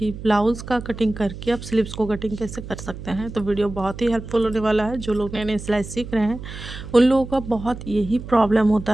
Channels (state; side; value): noise; right; hum, 11 dB below the sound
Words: ब्लाउज़ का कटिंग करके आप स्लीव्स को कटिंग कैसे कर सकते हैं। तो वीडियो बहुत ही हेल्पफुल होने वाला है। जो लोग नए नए सिलाई सीख रहे हैं उन लोगों का बहुत यही प्रॉब्लम होता